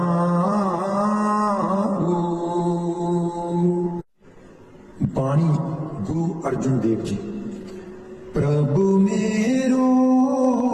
अर्जुन देव जी। प्रभु मेरो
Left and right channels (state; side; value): identical; both; correlation 1.00